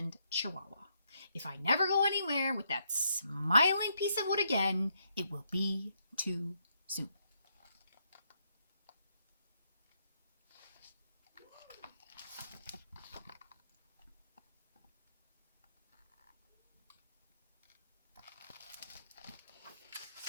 Chihuahua. If I never go anywhere with that smiling piece of wood again, it will be too soon.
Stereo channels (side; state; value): both; inverted; correlation -0.76